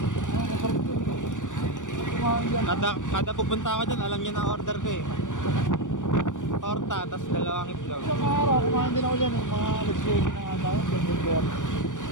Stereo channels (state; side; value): late; right; 0.87 ms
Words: Kada pupunta ako dyan, alam niya na order ko eh. Torta, tas dalawang itlog. Isang araw, kumain din ako dyan eh. Mga alas-20 na nga tayo.